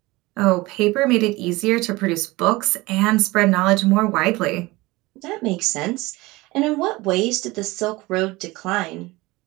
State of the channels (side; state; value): left; quieter; 21.3 dB